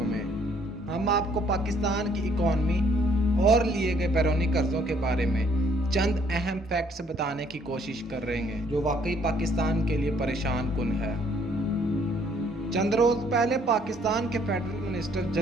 में हम आपको पाकिस्तान की इकॉनमी और लिए गए बैरूनी कर्ज़ों के बारे में चंद अहम फैक्ट्स बताने की कोशिश कर रहे हैं जो वाकई पाकिस्तान के लिए परेशान कुन है। चंद रोज़ पहले पाकिस्तान के फेडरल मिनिस्टर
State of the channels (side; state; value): both; normal; correlation 0.64